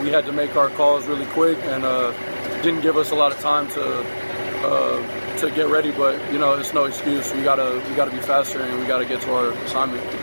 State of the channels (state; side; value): inverted; both; correlation -1.00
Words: we had to make our calls really quick, and didn't give us a lot of time to get ready. But it's no excuse. We gotta be faster, and we gotta get to our assignment.